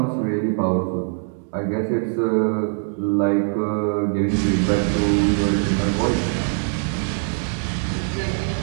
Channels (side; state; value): left; silent; 63 dB below the other